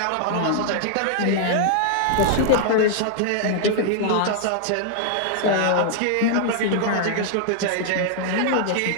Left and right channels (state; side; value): different; both; correlation -0.01